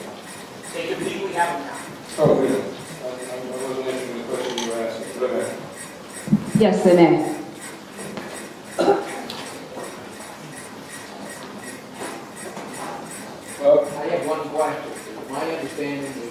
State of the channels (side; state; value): both; identical; correlation 1.00